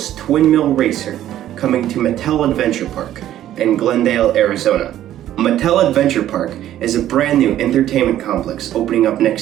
Twin Mill Racer coming to Mattel Adventure Park in Glendale, Arizona. Mattel Adventure Park is a brand new entertainment complex opening up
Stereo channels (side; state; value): left; quieter; 12.4 dB